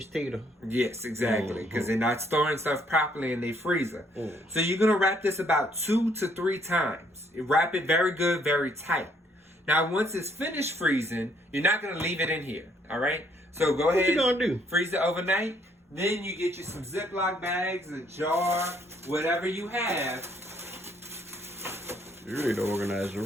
tater. Yes, exactly. Because they're not storing stuff properly in their freezer. So you're gonna wrap this about 2 to 3 times. Wrap it very good, very tight. Now once it's finished freezing, you're not gonna leave it in here. Alright? So go ahead. What you gonna do? Freeze it overnight. Then you get you some Ziploc bags, a jar, whatever you have. You need to organize your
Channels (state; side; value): normal; both; correlation 0.67